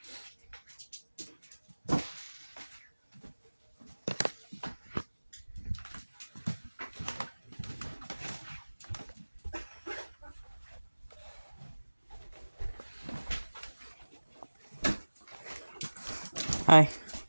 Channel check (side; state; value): both; inverted; correlation -1.00